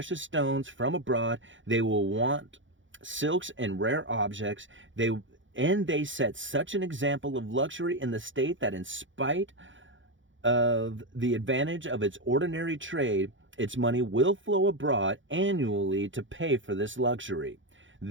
stones from abroad. They will want silks and rare objects. They set such an example of luxury in the state that in spite of the advantage of its ordinary trade, its money will flow abroad annually to pay for this luxury.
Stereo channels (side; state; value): left; late; 0.56 ms